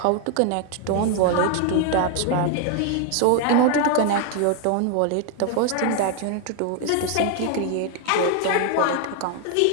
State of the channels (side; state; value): both; different; correlation 0.01